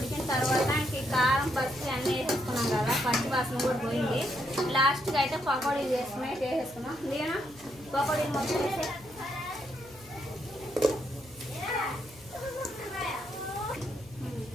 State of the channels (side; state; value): left; noise; hum, 24 dB below the sound